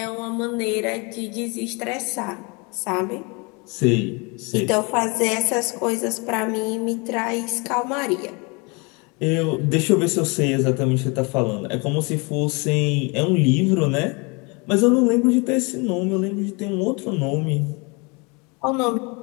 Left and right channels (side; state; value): right; quieter; 29.8 dB